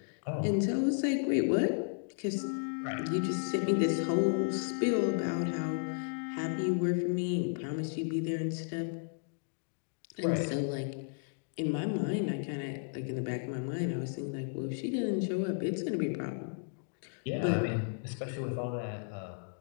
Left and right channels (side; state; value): right; silent; digital silence